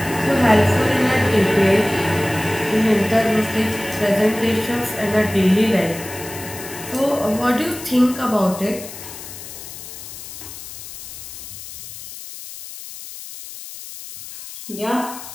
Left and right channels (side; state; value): left; noise; hiss, 12 dB below the sound